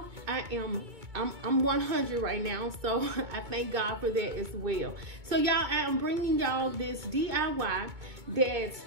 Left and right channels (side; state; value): left; late; 2.2 ms